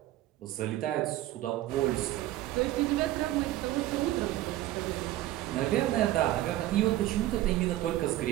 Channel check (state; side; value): quieter; left; 15.0 dB